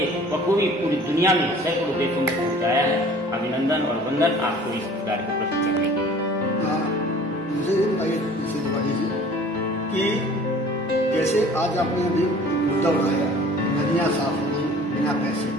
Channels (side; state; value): both; normal; correlation 0.48